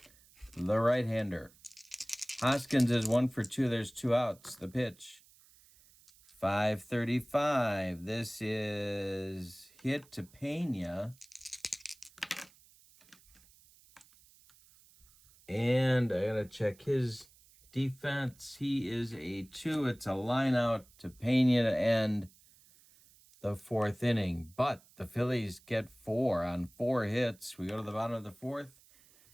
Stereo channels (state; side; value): noise; right; hiss, 27 dB below the sound